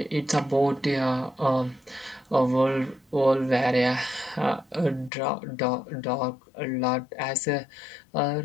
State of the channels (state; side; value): drops out; right; at 5.1 s